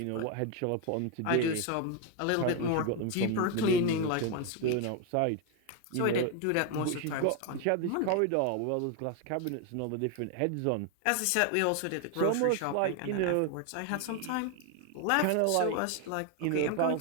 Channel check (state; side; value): different; both; correlation 0.01